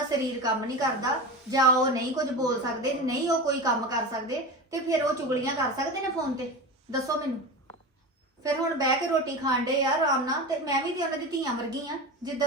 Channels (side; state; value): both; normal; correlation 0.26